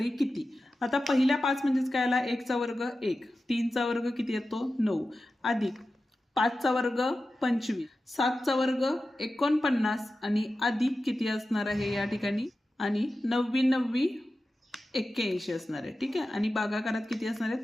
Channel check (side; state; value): both; normal; correlation 0.93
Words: किती. आता पहिल्या 5 म्हणजेच काय आला, 1चा वर्ग 1, 3चा वर्ग किती येतो 9, अधिक 5चा वर्ग 25, 7चा वर्ग 49 आणि अधिक किती असणार आहे या ठिकाणी, आणि 9 81 असणार आहे. ठीक आहे, आणि भागाकारात किती असणार आहे